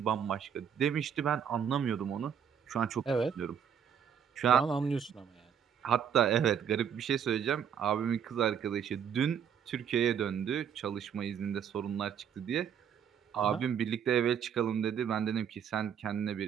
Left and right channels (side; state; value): left; quieter; 8.1 dB